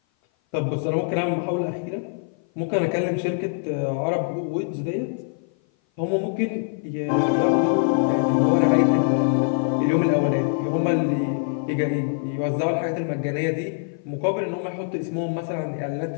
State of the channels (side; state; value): right; silent; 56 dB below the other